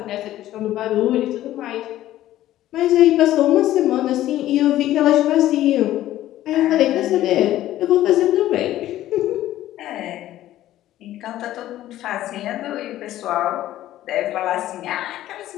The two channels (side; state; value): right; quieter; 13.9 dB